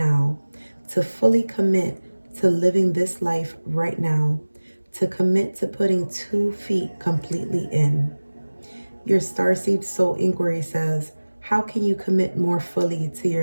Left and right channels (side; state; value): both; inverted; correlation -1.00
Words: to fully commit to living this life right now, to commit to putting 2 feet completely in. Your Starseed Soul Inquiry says, How can you commit more fully to